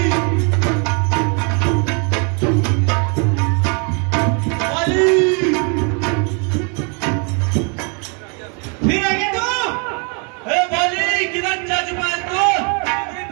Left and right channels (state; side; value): quieter; left; 36.3 dB